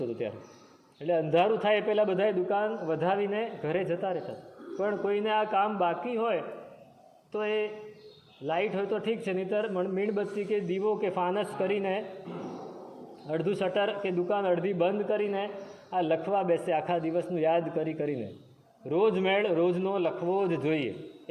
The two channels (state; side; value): identical; both; correlation 1.00